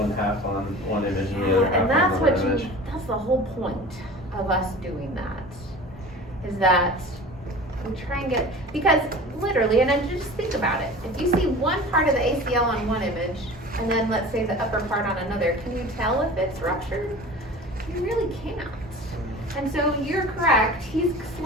half on one image and the other half And on that's another what image? that's the whole point of us doing that, is that we try and get, because literally, and then just think about it, if you see one part of the ACL on one image, and then let's say the upper part on another, can you tell if it's ruptured? You really can't. And so you're correct, he's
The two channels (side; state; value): both; normal; correlation 0.38